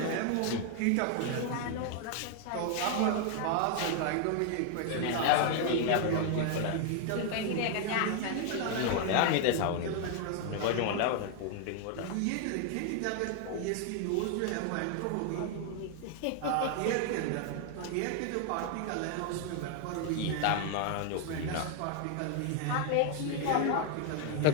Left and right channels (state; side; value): different; both; correlation 0.00